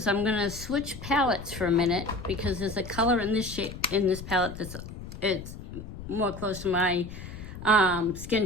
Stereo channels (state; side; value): noise; left; rumble, 11 dB below the sound